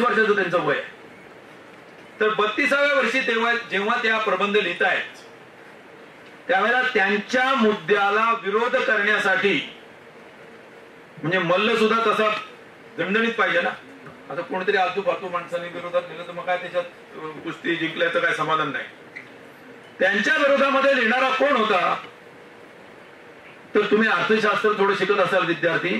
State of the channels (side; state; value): both; identical; correlation 1.00